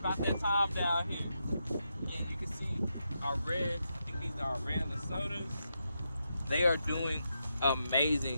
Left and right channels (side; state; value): both; inverted; correlation -0.84